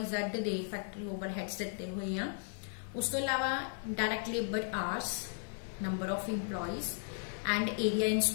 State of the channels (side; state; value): right; silent; 54 dB below the other